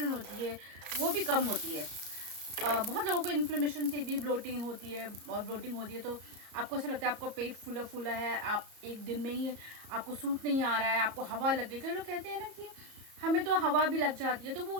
होती है वो भी कम होती है। बहुत लोगों को इन्फ्लेमेशन से भी ब्लोटिंग होती है और ब्लोटिंग होती है तो आपको ऐसा लगता है आपका पेट फूला फूला है, आप एक दिन में ही आपको सूट नहीं आ रहा है, आपको हवा लग गई। कई लोग कहते हैं ना कि हमें तो हवा भी लग जाती है, तो वो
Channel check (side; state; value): left; late; 34 ms